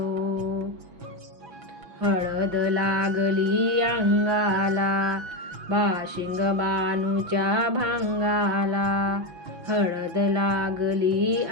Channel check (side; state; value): left; late; 6.0 ms